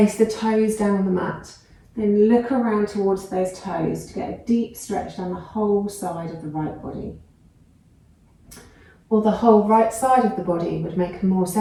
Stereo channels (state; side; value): identical; both; correlation 1.00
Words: the toes down on the mat. Then look around towards those toes to get a deep stretch down the whole side of the right body. Or the whole right side of the body would make a more